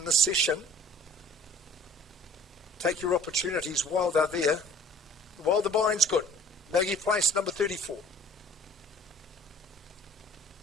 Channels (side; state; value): both; normal; correlation 0.51